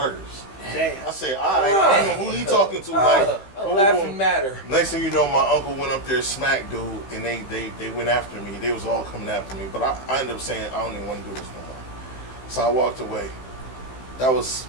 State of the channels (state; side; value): late; right; 15 ms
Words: Damn. I said, "All right, I don't know who he talking to." Like, A boom, boom, laughing boom. matter. Next thing you know, my uncle went up there, smacked dude, and they went after me. They was all coming after me, but I ended up saying, "I don't even want to do this no more." So I walked away. That was